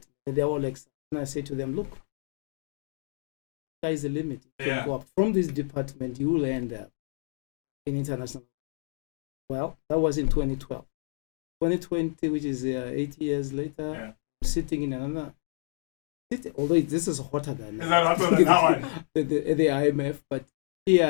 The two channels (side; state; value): right; silent; digital silence